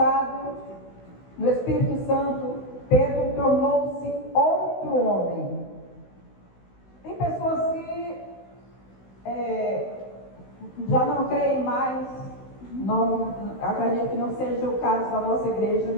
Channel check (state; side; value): late; right; 16 ms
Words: no Espírito Santo, Pedro tornou-se outro homem. Tem pessoas que já não creem mais, acredito que não seja o caso da nossa igreja,